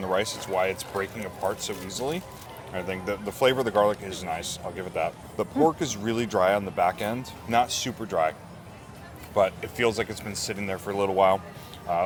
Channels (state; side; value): identical; both; correlation 1.00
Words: the rice. It's why it's breaking apart so easily. I think the flavor of the garlic is nice. I'll give it that. The pork is really dry on the back end, not super dry, but it feels like it's been sitting there for a little while.